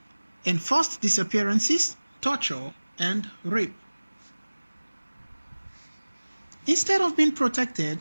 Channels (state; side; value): inverted; both; correlation -1.00